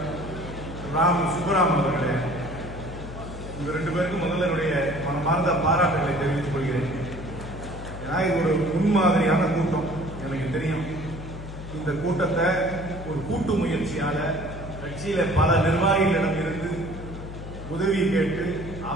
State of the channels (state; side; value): noise; left; hum, 11 dB below the sound